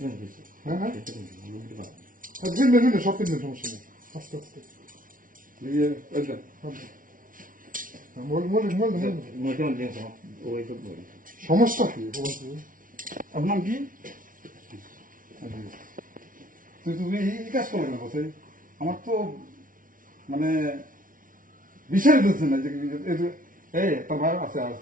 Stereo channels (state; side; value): late; left; 0.39 ms